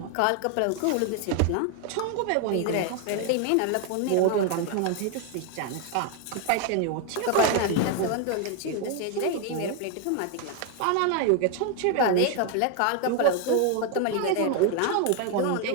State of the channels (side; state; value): both; different; correlation 0.01